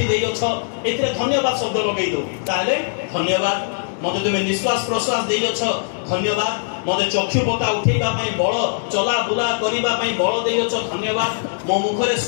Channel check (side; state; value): right; silent; 64 dB below the other